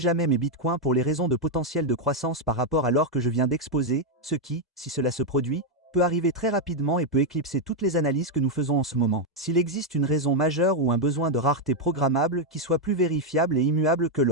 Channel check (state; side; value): normal; both; correlation 0.01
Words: mes bitcoins pour les raisons de potentiel de croissance par rapport à l'or que je viens d'exposer, ce qui, si cela se produit, peut arriver très rapidement et peut éclipser toutes les analyses que nous faisons en ce moment. S'il existe une raison majeure ou un besoin de rareté programmable qui soit plus vérifiable et immuable que